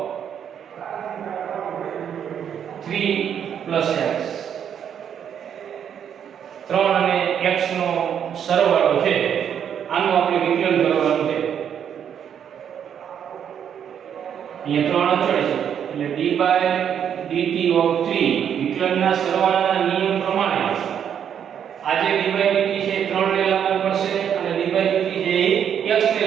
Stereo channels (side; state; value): left; quieter; 8.6 dB